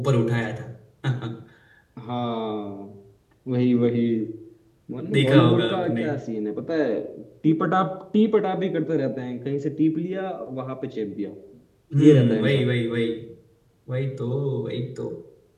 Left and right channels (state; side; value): identical; both; correlation 1.00